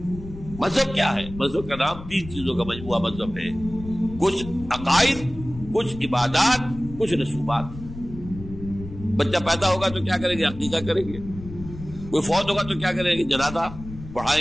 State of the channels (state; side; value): noise; left; rumble, 13 dB below the sound